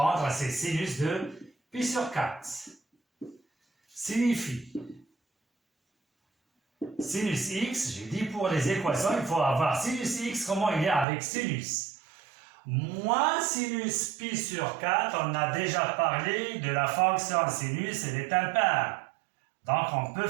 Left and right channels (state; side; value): drops out; left; at 11.1 s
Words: c'est sinus de pi sur 4. Signifie. Sinus x, j'ai dit pour les équations, il faut avoir sinus x, comment il est avec sinus. Moins sinus pi sur 4, on a déjà parlé de la fonction sinus, elle est impaire. Donc on peut